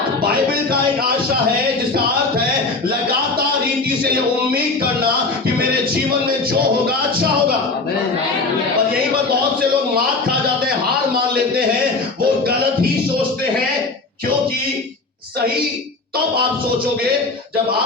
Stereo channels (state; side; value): quieter; right; 3.6 dB